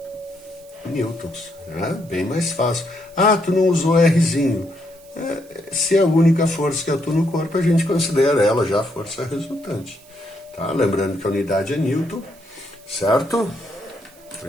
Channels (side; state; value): right; noise; hiss, 26 dB below the sound